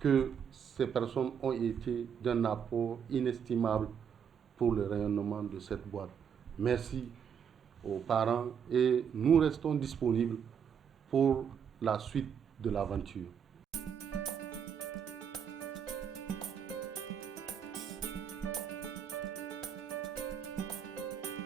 ces personnes ont été d'un apport inestimable pour le rayonnement de cette boîte. Merci aux parents et nous restons disponibles pour la suite de l'aventure.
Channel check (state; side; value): quieter; left; 7.7 dB